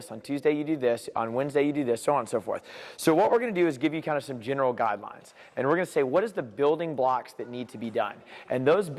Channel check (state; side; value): identical; both; correlation 1.00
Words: on Tuesday you do this, on Wednesday you do this, so on and so forth. So what we're going to do is give you kind of some general guidelines, and we're going to say what is the building blocks that need to be done. And those